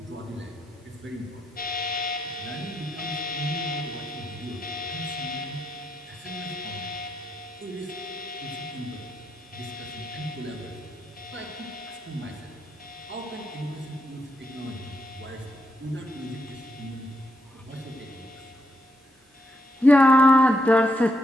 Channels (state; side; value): normal; both; correlation 0.78